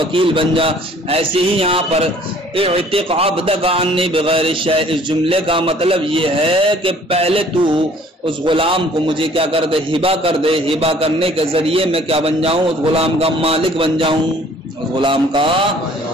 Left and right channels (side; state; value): both; normal; correlation 0.55